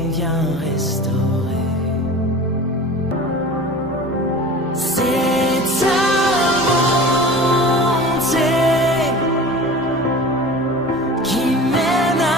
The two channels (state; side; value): normal; both; correlation 0.37